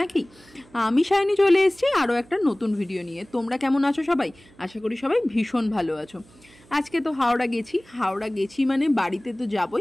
নাকি? আমি সায়নী চলে এসেছি আরও একটা নতুন ভিডিও নিয়ে। তোমরা কেমন আছো সবাই? আশা করি সবাই ভীষণ ভালো আছো। আজকে তো হাওড়া গেছি মানে বাড়িতে তো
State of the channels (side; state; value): right; noise; hum, 27 dB below the sound